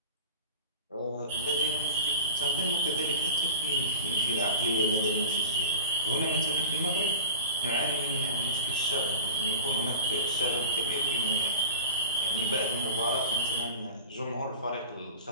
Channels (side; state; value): both; inverted; correlation -0.35